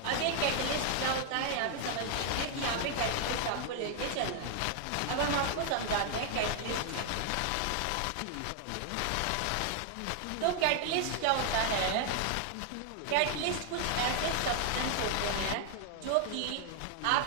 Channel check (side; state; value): both; different; correlation 0.00